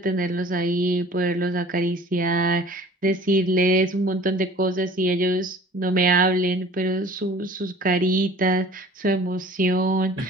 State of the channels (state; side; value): normal; both; correlation 0.47